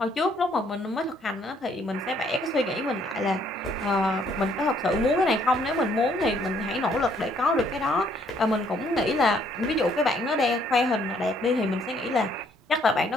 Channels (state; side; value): normal; both; correlation 0.66